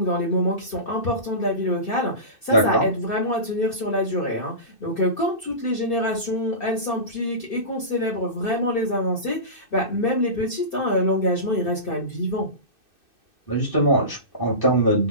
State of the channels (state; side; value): late; right; 2.6 ms